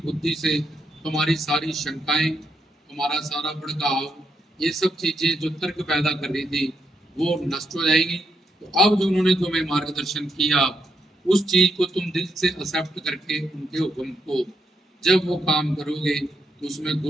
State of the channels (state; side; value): normal; both; correlation 0.80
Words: से तुम्हारी सारी शंकाएं, तुम्हारा सारा भड़काव, ये सब चीजें जो तर्क पैदा कर रही थी, वो नष्ट हो जाएगी। तो अब जो उन्होंने तुम्हें मार्गदर्शन किया उस चीज को तुम दिल से एक्सेप्ट करके उनके हुक्म को जब वो काम करोगे तो उसमें